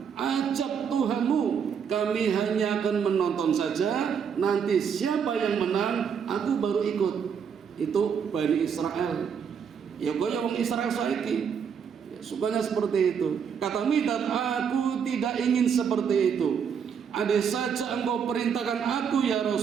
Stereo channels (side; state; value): left; quieter; 7.1 dB